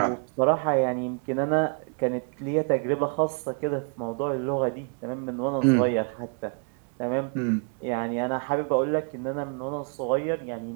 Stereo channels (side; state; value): left; quieter; 39.2 dB